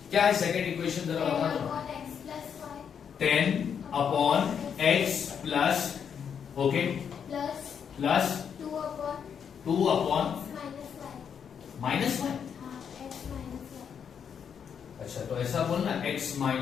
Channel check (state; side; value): quieter; right; 7.5 dB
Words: क्या है सेकंड इक्वेशन? जरा बता दो। 10/x plus, okay, plus 2/-y। अच्छा, तो ऐसा बोलना x